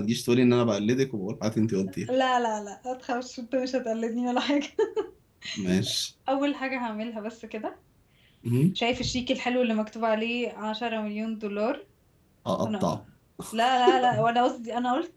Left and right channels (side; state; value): both; identical; correlation 1.00